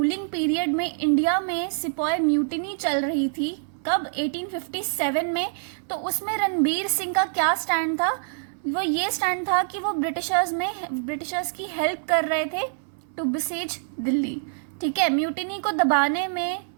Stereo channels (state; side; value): silent; left; 61 dB below the other